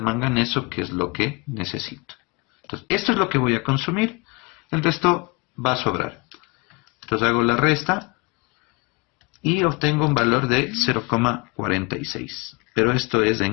que es lo que necesito. Entonces, esto es lo que voy a consumir. El resto va a sobrar. Entonces hago la resta y obtengo un valor de 0,46. Pero esto es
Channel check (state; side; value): quieter; right; 28.2 dB